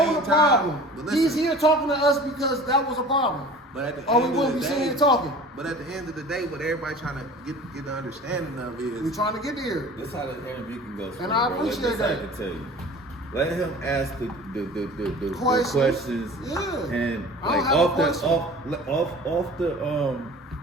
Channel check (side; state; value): both; normal; correlation 0.42